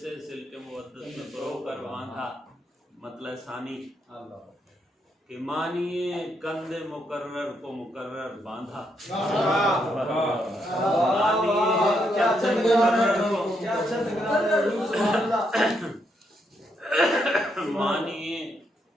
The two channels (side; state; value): both; normal; correlation 0.77